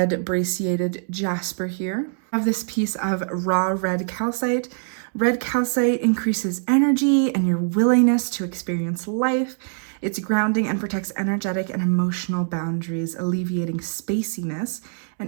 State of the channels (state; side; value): silent; left; 61 dB below the other